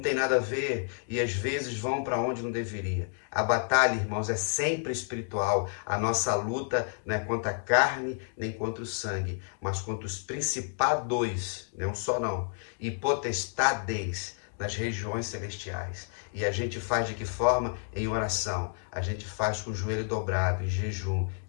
tem nada a ver, e às vezes vão para onde não deveria. A batalha, irmãos, é sempre espiritual. A nossa luta não é contra a carne, nem contra o sangue, mas contra os principados, não só não, e potestades nas regiões celestiais. E a gente faz de que forma? Em oração. A gente faz com o joelho dobrado, em jejum.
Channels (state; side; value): silent; right; 58 dB below the other